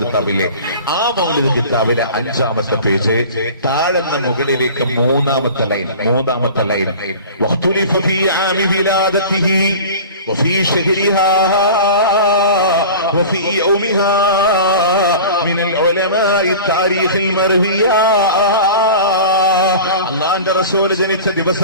കിതാബില്ലേ, ആ മൗലിദ് കിതാബിലെ 5ാമത്തെ പേജ് താഴെന്ന മുകളിലേക്ക് 3ാമത്തെ ലൈൻ വഖ്തുലിഫ ഫീ ആമി വിലാദതിഹി വഫീ ശഹരിഹാ വഫീ യൗമിഹാ മിനൽ ഉലമാഇ താരീഖിൽ മർവിയാ. അല്ലാഹുവിന്റെ റസൂൽ ജനിച്ച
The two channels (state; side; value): inverted; both; correlation -0.37